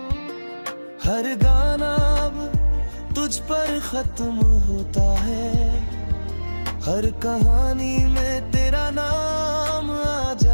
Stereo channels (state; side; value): inverted; both; correlation -1.00